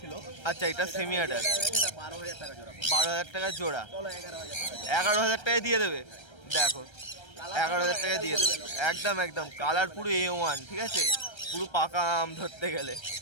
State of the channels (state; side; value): late; right; 1.3 ms